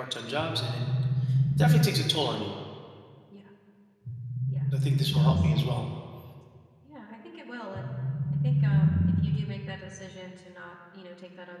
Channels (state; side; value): identical; both; correlation 1.00